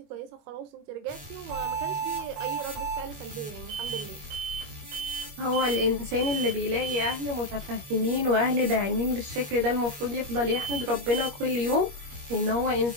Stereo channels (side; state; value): left; late; 21 ms